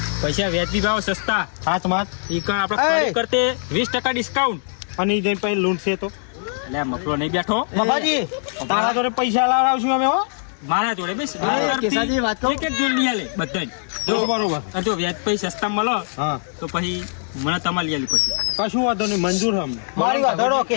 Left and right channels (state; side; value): silent; right; digital silence